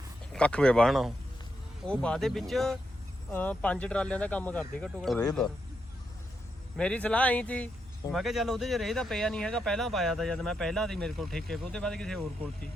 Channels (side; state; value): both; normal; correlation 0.83